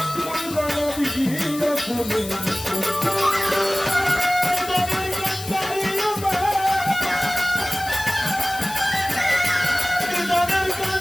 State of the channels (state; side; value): noise; left; hiss, 12 dB below the sound